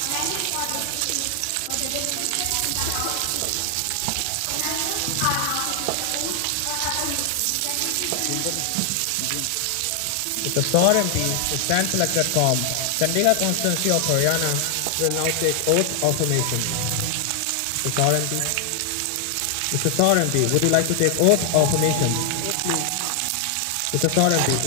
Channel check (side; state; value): both; different; correlation 0.00